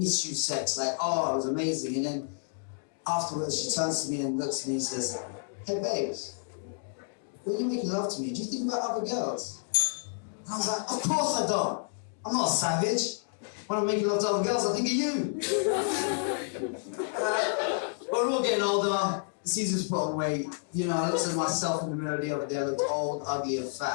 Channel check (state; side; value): silent; right; digital silence